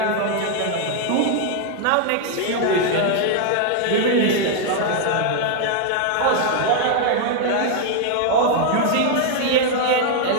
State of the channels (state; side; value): different; both; correlation 0.00